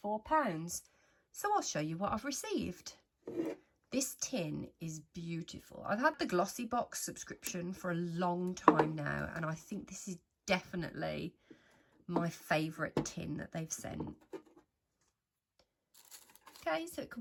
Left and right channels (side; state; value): both; identical; correlation 1.00